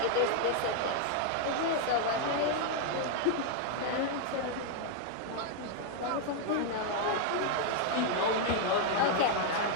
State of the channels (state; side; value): different; both; correlation 0.00